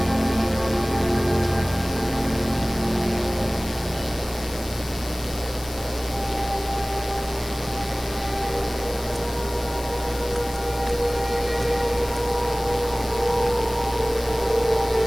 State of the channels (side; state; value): left; noise; hiss, 14 dB below the sound